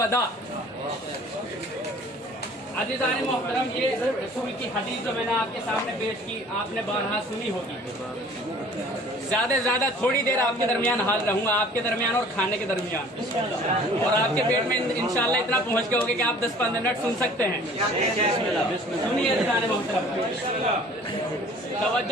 عزیزان محترم، یہ رسول کی حدیث جو میں نے آپ کے سامنے پیش کی آپ نے بارہا سنی ہوگی. زیادہ سے زیادہ تھوڑی دیر آپ کے درمیان حاضر رہوں گا، آپ کے درمیان اور کھانے کے درمیان، اور آپ کے پیٹ میں انشاءاللہ اتنا پہنچ گئے ہوگے کہ آپ 10-15 منٹ سن سکتے ہیں. سنیے عزیزان محترم،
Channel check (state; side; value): normal; both; correlation 0.50